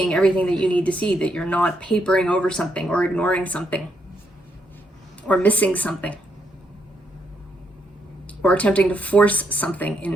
everything that you need to see, that you're not papering over something or ignoring something or missing something or attempting to force something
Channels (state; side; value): normal; both; correlation 0.77